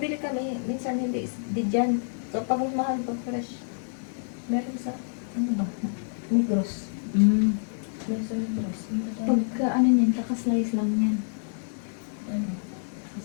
minsan hindi di dyan. Kapag mahal ko fresh. Meron sa, ano ba? Migros. Meron sa Migros. Pagka ano niyan, kakaslice lang yan.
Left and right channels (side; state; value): right; silent; digital silence